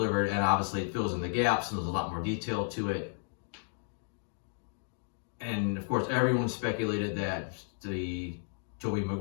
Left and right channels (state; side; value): silent; right; digital silence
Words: And obviously it fills in the gaps, and there's a lot more detail to it. And of course, everyone speculated that the Tobey